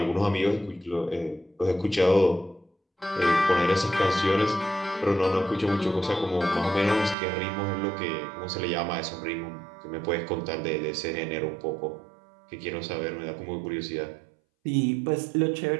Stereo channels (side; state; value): left; drops out; at 7.2 s